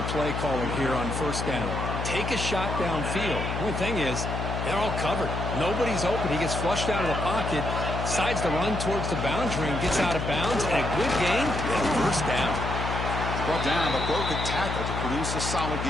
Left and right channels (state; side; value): noise; left; hum, 3 dB below the sound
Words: play caller here on first down. Take a shot downfield. One thing is, they're all covered. Nobody's open. He gets flushed out of the pocket, decides to run towards the boundary and gets out of bounds, and a good gain and first down. Brought down, but broke a tackle to produce a solid